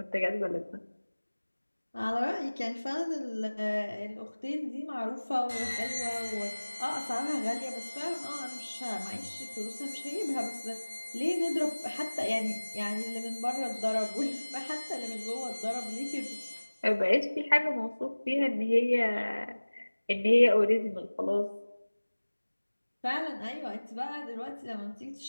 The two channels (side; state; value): both; inverted; correlation -1.00